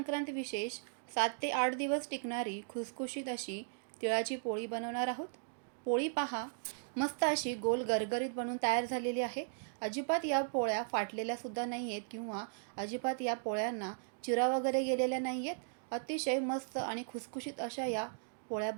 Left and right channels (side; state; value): left; silent; digital silence